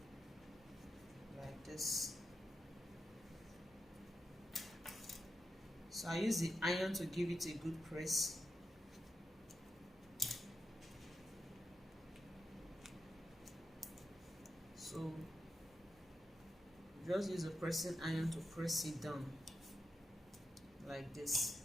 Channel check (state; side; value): normal; both; correlation 0.87